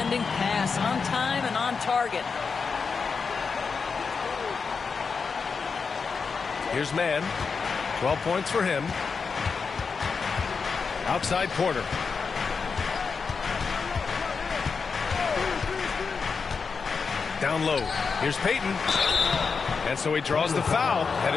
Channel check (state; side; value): quieter; right; 5.2 dB